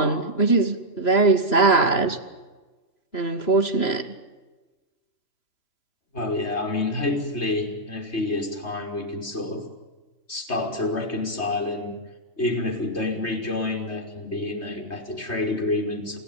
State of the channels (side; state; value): right; late; 3.2 ms